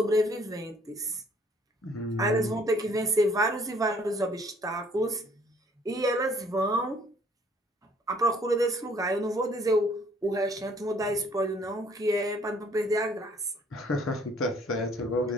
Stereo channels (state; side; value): normal; both; correlation 0.61